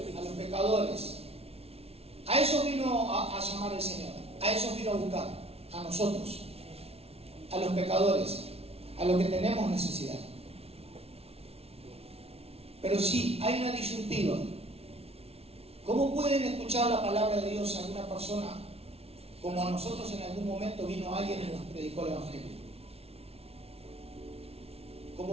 A los pecadores. A eso vino a llamar el Señor, a eso vino a buscar, a nosotros, a los pecadores, a los que tenemos necesidad. Pero sí, hay una disyuntiva. ¿Cómo pueden escuchar la palabra de Dios a alguna persona como a nosotros en algún momento vino alguien y nos predicó el Evangelio?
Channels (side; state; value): left; late; 0.30 ms